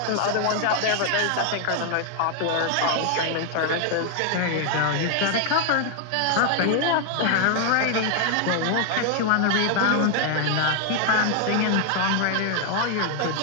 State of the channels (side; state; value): both; different; correlation 0.00